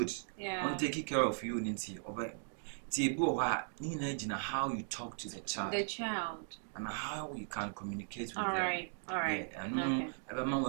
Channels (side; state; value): left; silent; digital silence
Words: Yeah. On take care of you ninti oba ti ebi o ha ni na gina how you talk to the child and how you can communicate with them. All right. Yeah, I know abama